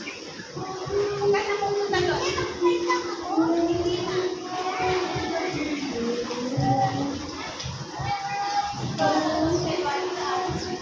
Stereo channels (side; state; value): both; identical; correlation 1.00